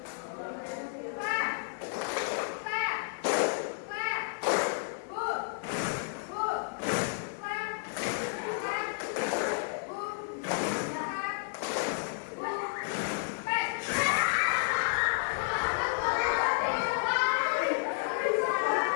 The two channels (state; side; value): silent; right; digital silence